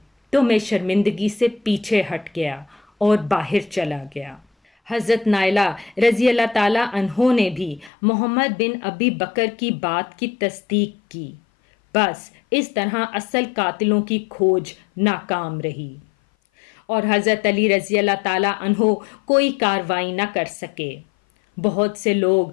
تو میں شرمندگی سے پیچھے ہٹ گیا اور باہر چلا گیا۔ حضرت نائلہ رضی اللہ تعالیٰ عنہ نے بھی محمد بن ابی بکر کی بات کی تصدیق کی۔ بس اس طرح اصل قاتلوں کی کھوج ناکام رہی اور حضرت علی رضی اللہ تعالیٰ عنہ کوئی کارروائی نہ کر سکے۔ بہت سے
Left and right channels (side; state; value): right; drops out; at 7.9 s